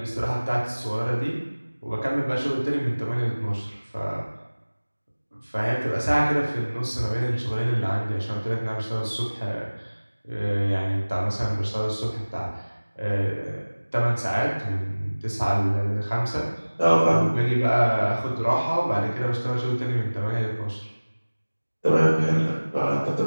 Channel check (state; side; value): inverted; both; correlation -1.00